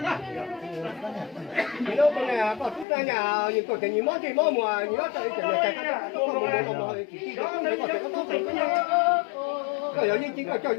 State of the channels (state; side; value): drops out; right; at 2.9 s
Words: 那个呢？把子弹呀，你做成你忙这忙么？你要找一点来干，都忙忙忙，自己的工作个这个当成个个要认真个叫